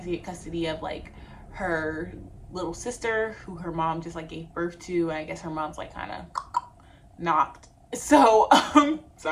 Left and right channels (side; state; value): both; identical; correlation 1.00